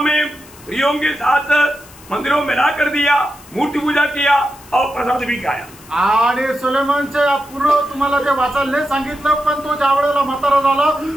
में स्त्रियों के साथ मंदिरों में ला कर दिया, मूर्ति पूजा किया और प्रसाद भी खाया। आणि सुलेमानचे पूर्ण तुम्हाला ते वाचायला नाही सांगितलं, पण तो ज्या वेळेला म्हातारा झाला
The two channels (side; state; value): left; noise; hiss, 22 dB below the sound